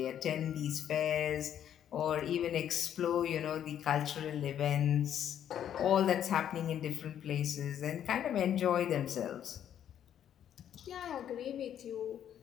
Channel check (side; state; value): right; quieter; 10.0 dB